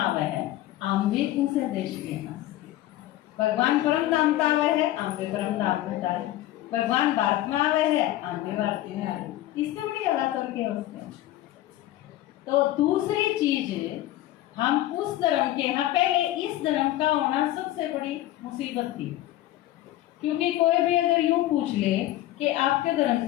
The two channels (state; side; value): quieter; right; 14.8 dB